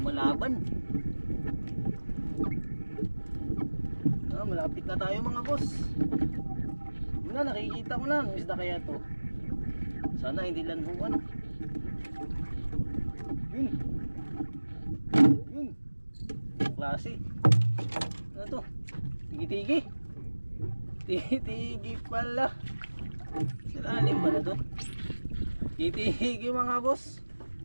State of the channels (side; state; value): both; inverted; correlation -1.00